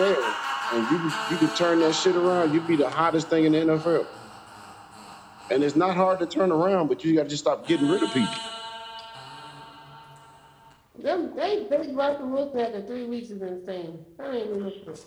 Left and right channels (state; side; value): identical; both; correlation 1.00